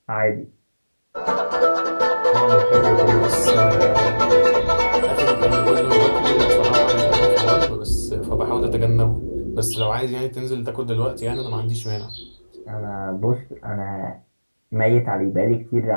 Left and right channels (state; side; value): inverted; both; correlation -1.00